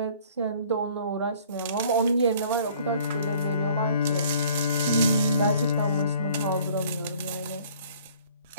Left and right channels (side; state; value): both; inverted; correlation -0.55